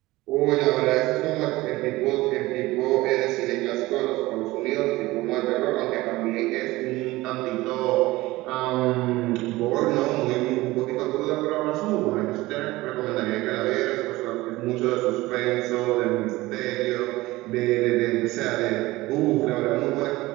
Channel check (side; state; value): left; quieter; 19.2 dB